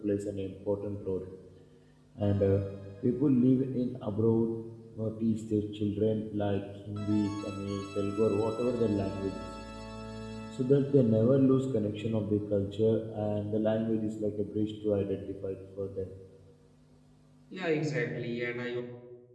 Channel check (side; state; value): both; identical; correlation 1.00